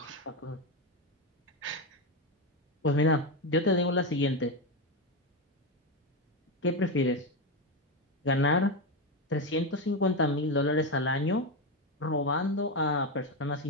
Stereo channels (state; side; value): normal; both; correlation 0.12